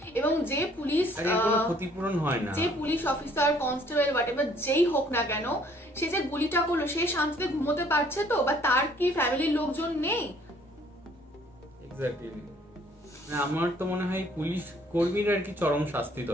এবং যে পুলিশ কোনো ক্ষতিপূরণ হয় না, যে পুলিশ অফিসার কনস্টেবল হোয়াটএভার যেই হোক না কেন সে যে গুলিটা করলো সে শান্তিতে ঘুমোতে পারছে তো, বা তার কি ফ্যামিলির লোকজন নেই? এক্স্যাক্টলি, আমার তো মনে হয় পুলিশ কর্মীর আর কি চরম শাস্তি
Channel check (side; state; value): both; normal; correlation 0.60